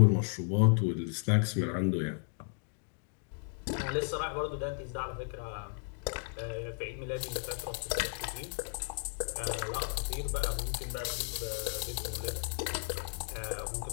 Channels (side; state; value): right; silent; 55 dB below the other